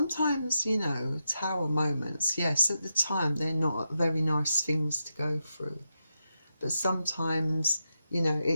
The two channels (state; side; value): inverted; both; correlation -0.86